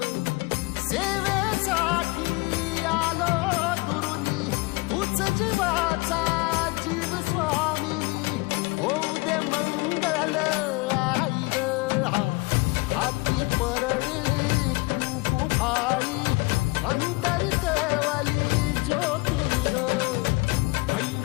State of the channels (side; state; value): right; quieter; 24.9 dB